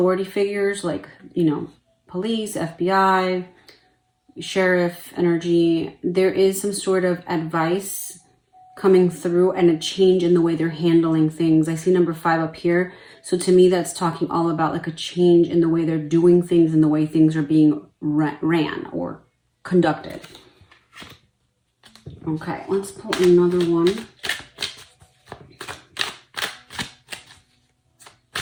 figures, like, you know, police, FBI, sheriff energy. There is some sort of advice coming through and a change in the way they're handling things. I see number 5 up here. So to me, that's talking all about like a change in the way they're doing things and the way things are being ran or conducted. Okay, let's pull another one.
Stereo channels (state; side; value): identical; both; correlation 1.00